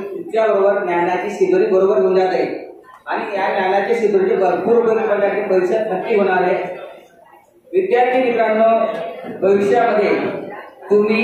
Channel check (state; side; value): identical; both; correlation 1.00